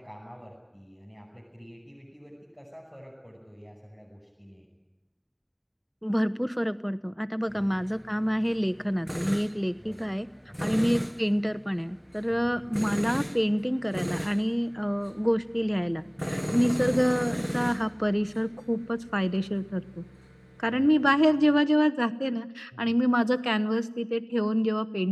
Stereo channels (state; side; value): identical; both; correlation 1.00